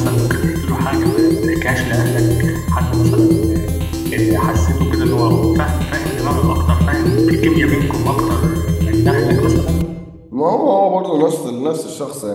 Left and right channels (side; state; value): both; identical; correlation 1.00